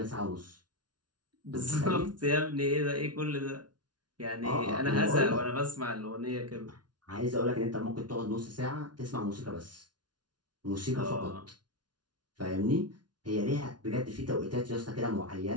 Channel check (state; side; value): late; left; 0.70 ms